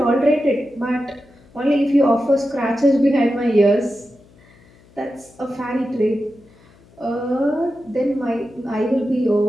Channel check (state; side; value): noise; left; hum, 28 dB below the sound